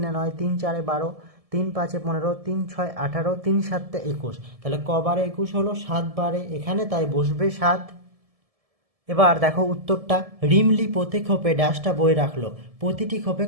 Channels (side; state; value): left; late; 1.7 ms